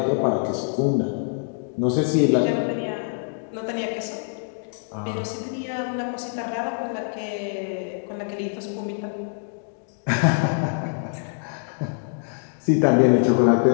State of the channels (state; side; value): silent; right; digital silence